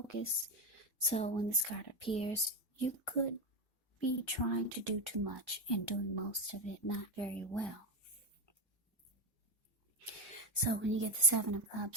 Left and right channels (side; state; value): both; normal; correlation 0.12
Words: So when this card appears, you could be trying to do too much and doing most of it not very well. So when you get the Seven of